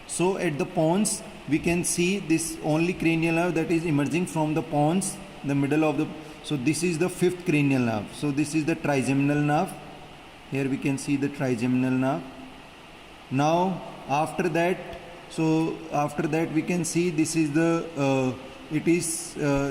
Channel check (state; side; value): identical; both; correlation 1.00